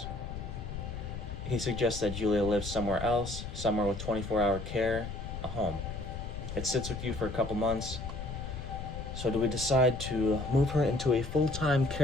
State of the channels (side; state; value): left; noise; rumble, 7 dB below the sound